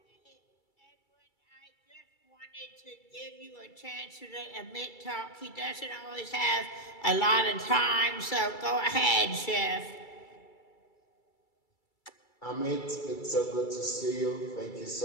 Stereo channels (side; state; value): right; late; 2.3 ms